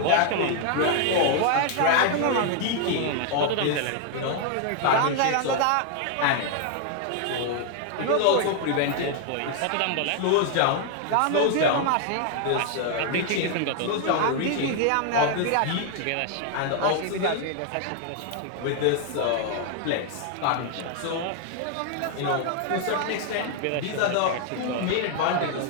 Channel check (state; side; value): different; both; correlation 0.00